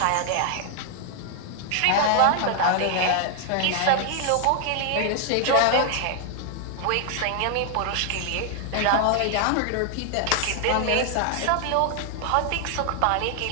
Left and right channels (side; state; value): both; different; correlation 0.00